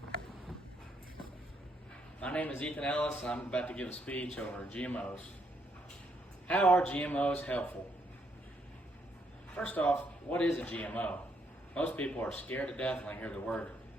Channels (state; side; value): normal; both; correlation 0.74